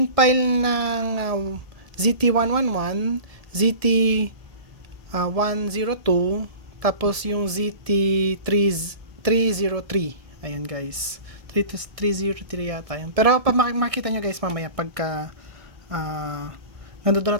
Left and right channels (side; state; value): left; late; 1.7 ms